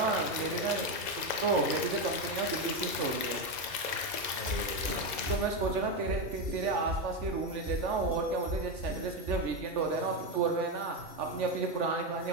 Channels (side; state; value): left; late; 2.0 ms